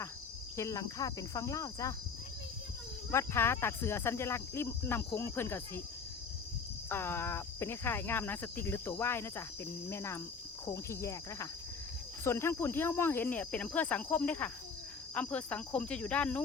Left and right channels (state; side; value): quieter; right; 5.3 dB